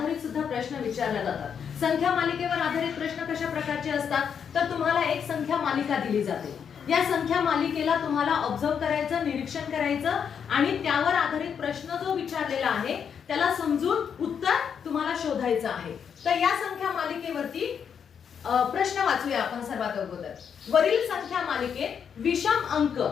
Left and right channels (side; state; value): right; quieter; 7.4 dB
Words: सुद्धा प्रश्न विचारले जातात. संख्या मालिकेवर आधारित प्रश्न कशा प्रकारचे असतात तर तुम्हाला एक संख्या मालिका दिली जाते. या संख्या मालिकेला तुम्हाला ऑब्झर्व करायचं, निरीक्षण करायचं आणि त्यावर आधारित प्रश्न जो विचारलेला आहे त्याला समजून उत्तर तुम्हाला शोधायचं आहे. तर या संख्या मालिकेवरती प्रश्न वाचूया आपण सर्वात अगोदर. वरील संख्या मालिकेत विषम अंक,